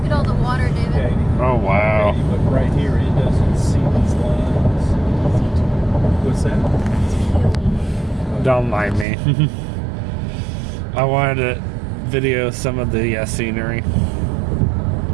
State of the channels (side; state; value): left; drops out; at 9.1 s